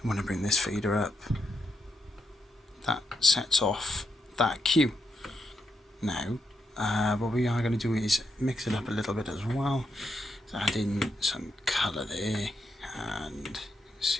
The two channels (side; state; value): both; normal; correlation 0.82